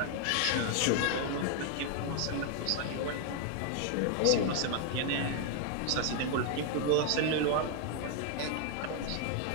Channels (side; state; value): both; different; correlation 0.00